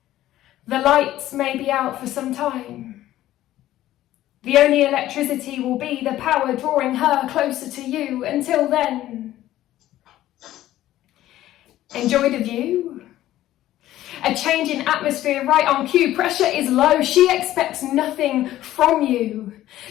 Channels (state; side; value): quieter; right; 14.1 dB